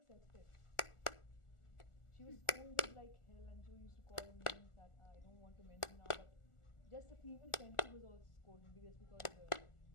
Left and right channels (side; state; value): right; late; 1.4 ms